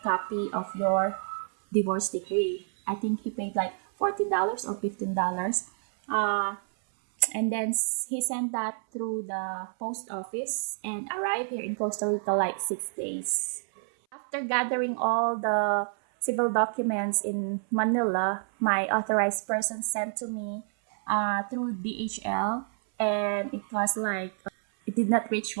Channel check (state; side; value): silent; left; 59 dB below the other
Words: copy of your divorce decree. I think he paid like $14 or $15. And then he sent that through the post office and arrived here in Costa Rica like 6 days. After gathering all the civil documents in Manila, my authorized person sent to me through DHL, and it was like, it did not reach